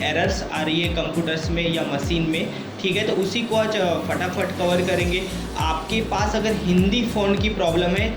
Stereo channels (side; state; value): both; identical; correlation 1.00